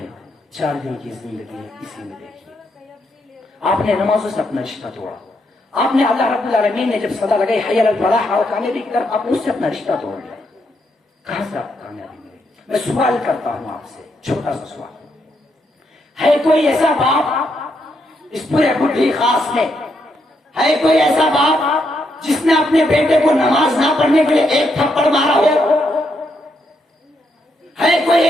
ہے 4 دن کی زندگی ہے، اسی میں دیکھیے. آپ نے نمازوں سے اپنا رشتہ توڑا، آپ نے اللہ رب العالمین نے جب صدا لگائی حی علی الفلاح اور کامیابی کی طرف، آپ نے اس سے اپنا رشتہ توڑ لیا. کہاں سے آپ کامیابی ملے؟ میں سوال کرتا ہوں آپ سے، چھوٹا سا سوال. ہے کوئی ایسا باپ اس پورے بڈھی خاص میں، ہے کوئی ایسا باپ جس نے اپنے بیٹے کو نماز نہ پڑھنے کے لیے ایک تھپڑ مارا ہو؟ ہے کوئی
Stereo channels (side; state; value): both; normal; correlation 0.78